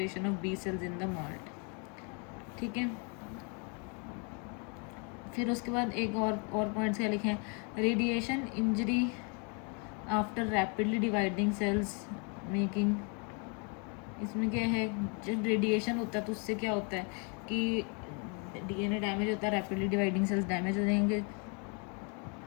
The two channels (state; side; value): quieter; right; 36.2 dB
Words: of B cells in the MALT. ठीक है, फिर उसके बाद एक और पॉइंट्स क्या लिखे हैं, radiation injury after rapidly dividing cells making. इसमें क्या है, जब रेडिएशन होता है तो उससे क्या होता है कि DNA डैमेज होता है, रैपिडली डिवाइडिंग सेल्स डैमेज हो जाएंगे,